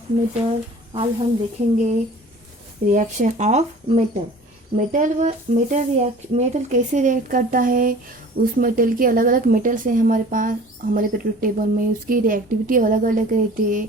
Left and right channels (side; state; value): both; normal; correlation 0.45